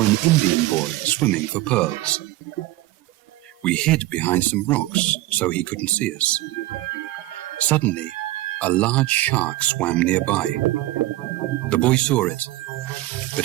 an Indian boy swimming for pearls. We hid behind some rocks so he couldn't see us. Suddenly, a large shark swam nearby. The boy saw it, but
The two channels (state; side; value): quieter; left; 17.3 dB